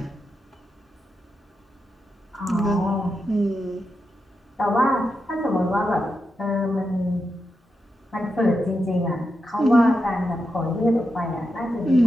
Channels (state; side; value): normal; both; correlation 0.87